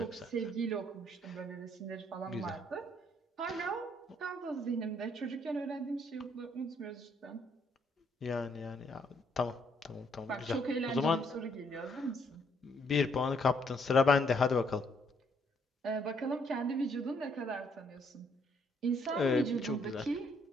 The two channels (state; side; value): normal; both; correlation 0.69